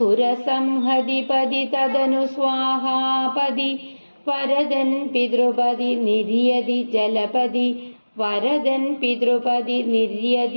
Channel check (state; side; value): inverted; both; correlation -1.00